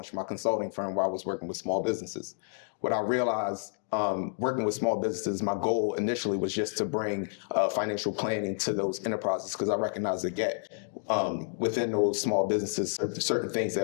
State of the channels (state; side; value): silent; right; digital silence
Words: my consulting firm where I was working with small businesses. What I realized working with small businesses, my goal initially was just to bring financial planning to those enterprises, because I recognized the gap within those small businesses, certain things